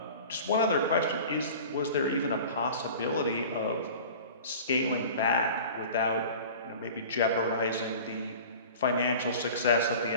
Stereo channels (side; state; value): both; inverted; correlation -0.40